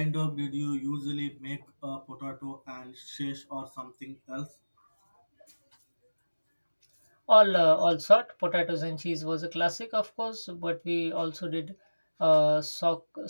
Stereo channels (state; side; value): inverted; both; correlation -1.00